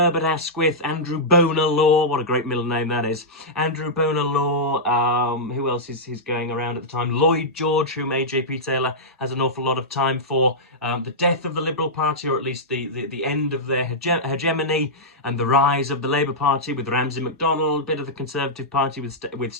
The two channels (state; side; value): normal; both; correlation -0.10